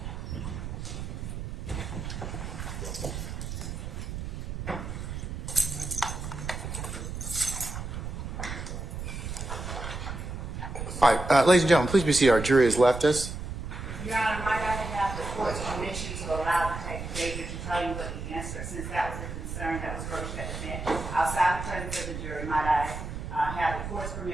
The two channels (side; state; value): right; noise; rumble, 6 dB below the sound